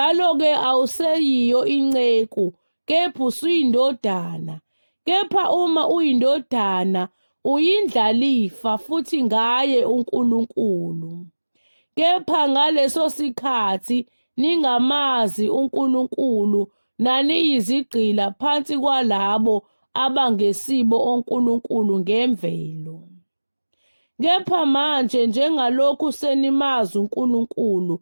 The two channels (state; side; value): inverted; both; correlation -1.00